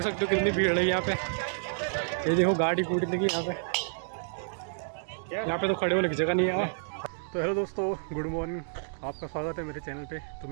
सकते हो कितनी भीड़ है यहाँ पे। ये देखो गाड़ी कूटी लगी यहाँ पे तो खड़े होने की जगह नहीं है। तो हेलो दोस्तों, गुड मॉर्निंग, आपका स्वागत है मेरे चैनल पे। तो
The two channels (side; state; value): left; silent; digital silence